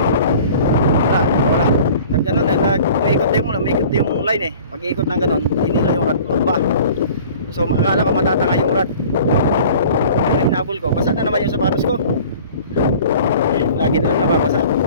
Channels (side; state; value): both; inverted; correlation -0.46